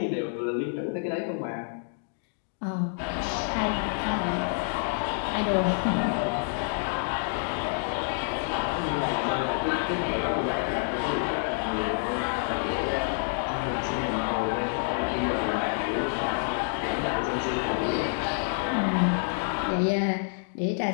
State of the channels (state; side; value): silent; right; digital silence